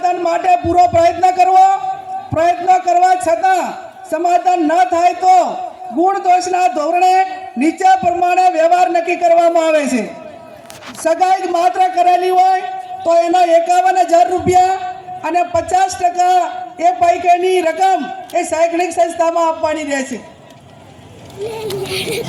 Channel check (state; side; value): identical; both; correlation 1.00